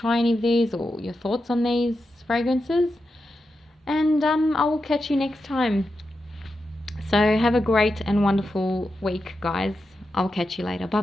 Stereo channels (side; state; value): both; normal; correlation 0.89